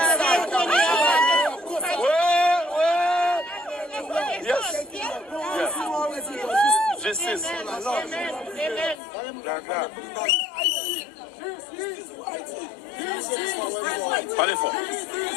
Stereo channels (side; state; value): right; drops out; at 9.0 s